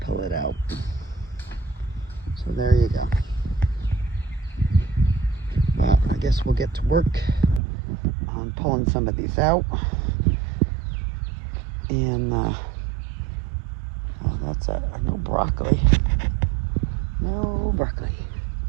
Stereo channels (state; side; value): drops out; left; at 7.6 s